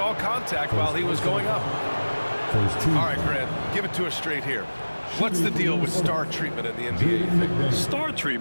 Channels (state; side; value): inverted; both; correlation -1.00